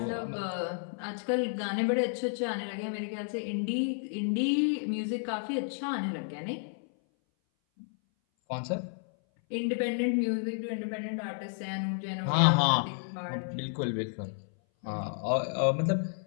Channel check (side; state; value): right; silent; 57 dB below the other